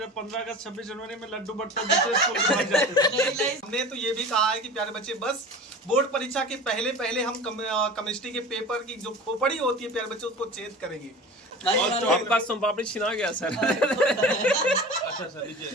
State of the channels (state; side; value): normal; both; correlation 0.36